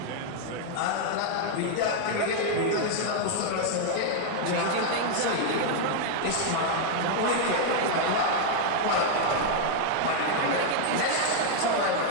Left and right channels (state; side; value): different; both; correlation 0.00